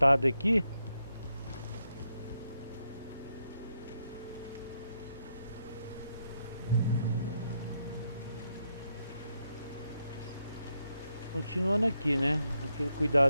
aqui. Continuando aqui, né? Aquele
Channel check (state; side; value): inverted; both; correlation -0.81